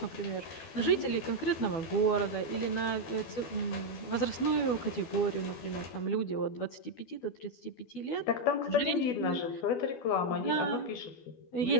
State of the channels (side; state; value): right; late; 12 ms